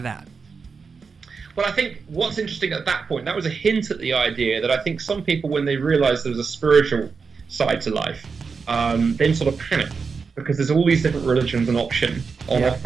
Well, I think what's interesting at that point, that was a hint at the idea that I think some people, when they realised there was a spiritual side to life, then sort of panic because there's all these different religions on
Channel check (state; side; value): quieter; left; 5.2 dB